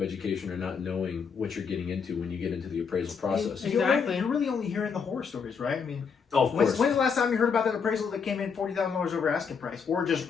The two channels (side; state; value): right; quieter; 6.1 dB